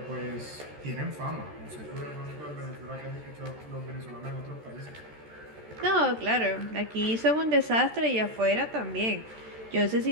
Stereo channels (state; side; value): late; left; 13 ms